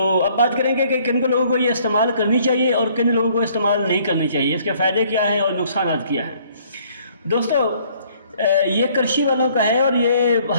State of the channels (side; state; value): both; inverted; correlation -0.61